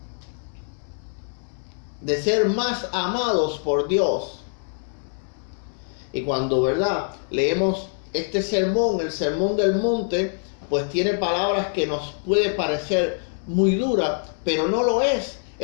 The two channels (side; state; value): right; silent; digital silence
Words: de ser más amados por Dios. Y cuando, ¿verdad?, leemos este sermón, el sermón del monte, pues tiene palabras que nos puede parecer muy duras, pero no lo es.